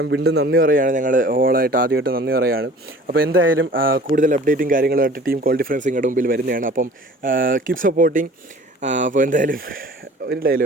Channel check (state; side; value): normal; both; correlation 0.46